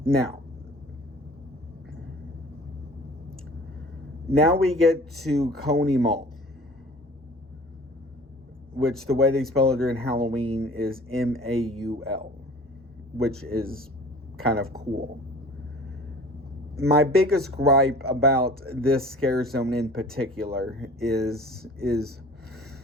Now we get to Coney Mall, which the way they spell it during Halloween is Maul, which is kind of cool. My biggest gripe about this scare zone in particular is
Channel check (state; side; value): normal; both; correlation 0.45